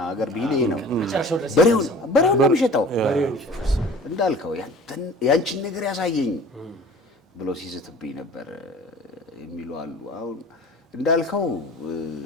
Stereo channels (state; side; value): normal; both; correlation 0.43